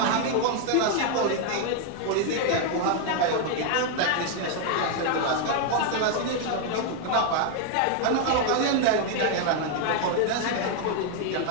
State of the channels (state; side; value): different; both; correlation 0.00